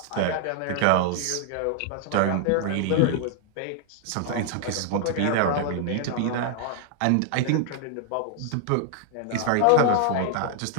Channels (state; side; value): different; both; correlation 0.00